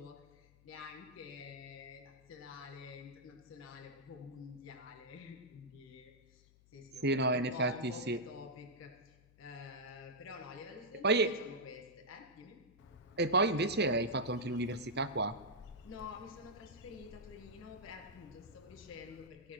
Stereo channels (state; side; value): noise; left; hum, 27 dB below the sound